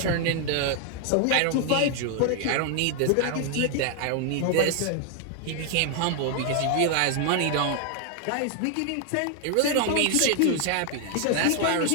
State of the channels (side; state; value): both; different; correlation 0.00